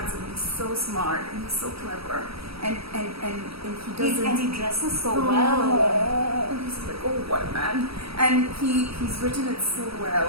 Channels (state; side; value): late; left; 0.77 ms